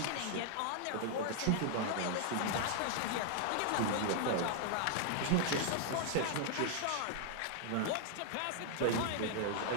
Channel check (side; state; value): both; different; correlation 0.00